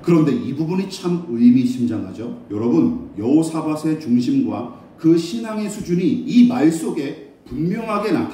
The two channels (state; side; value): identical; both; correlation 1.00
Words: 그런데 이 부분이 참 의미심장하죠. 여러분, 여호사밧의 중심과 그 신앙의 수준이 이 말 속에 분명하게